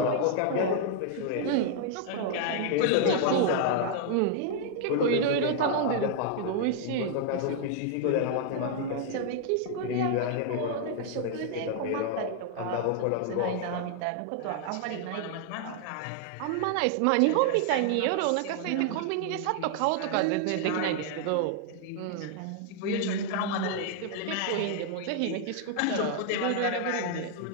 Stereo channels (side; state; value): both; different; correlation 0.00